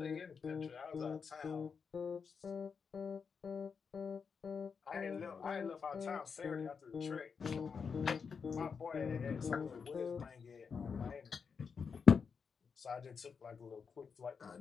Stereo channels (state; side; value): quieter; right; 5.9 dB